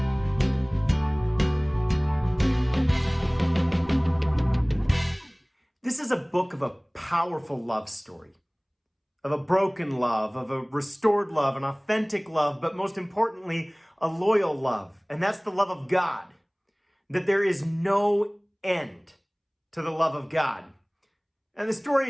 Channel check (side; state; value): both; identical; correlation 1.00